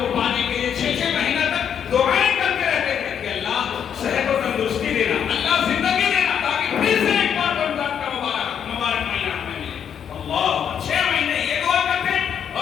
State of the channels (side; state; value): right; quieter; 8.3 dB